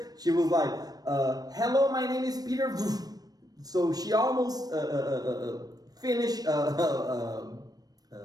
she was like, hello, my name is Peter. So she almost finished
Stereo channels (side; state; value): left; late; 0.19 ms